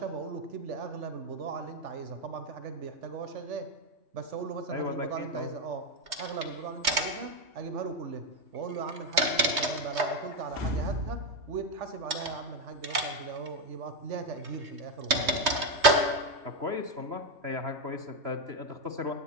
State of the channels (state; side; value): late; left; 3.2 ms